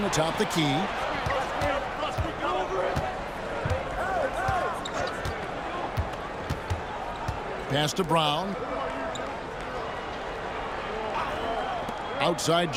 atop the key. Pass to Brown. Outside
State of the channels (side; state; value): both; identical; correlation 1.00